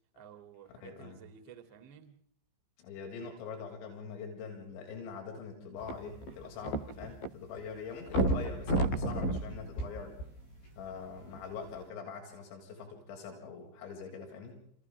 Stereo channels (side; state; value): right; late; 15 ms